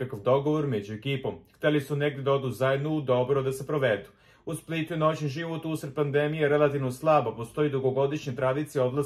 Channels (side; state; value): both; identical; correlation 1.00